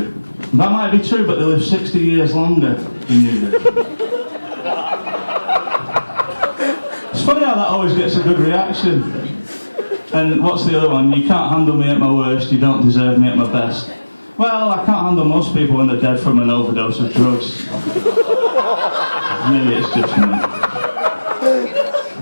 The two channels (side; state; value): both; inverted; correlation -1.00